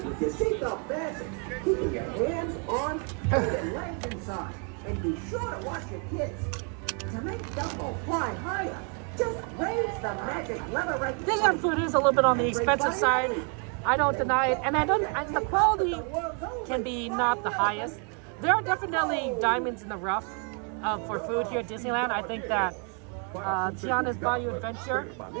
with your seatbelt fastened, keeping your hands, arms, and legs inside. And be sure to watch your kids. To make Dumbo fly higher, just raise the magic lever right there. Disneyland food is a little bit on the expensive side. I don't deny it, and the quality can be not the highest. There are definitely diamonds in the rough for food here at Disneyland. I think that Tiana's Bayou Adventure.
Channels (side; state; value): left; quieter; 39.1 dB